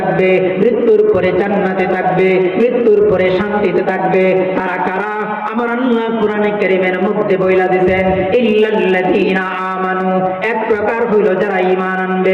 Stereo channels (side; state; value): both; identical; correlation 1.00